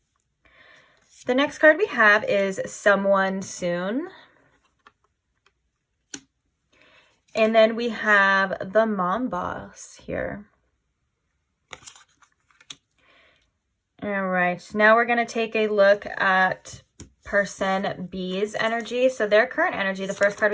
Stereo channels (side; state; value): both; identical; correlation 1.00